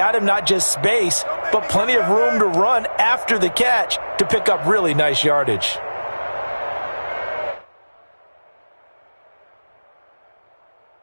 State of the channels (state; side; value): inverted; both; correlation -1.00